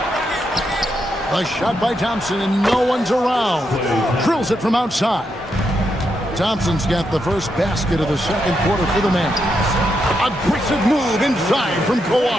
A shot by Thompson and no one's around. Drills it from outside. Thompson's got the first basket of the second quarter for the Mavs. Aggressive move inside from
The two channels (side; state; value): both; normal; correlation 0.82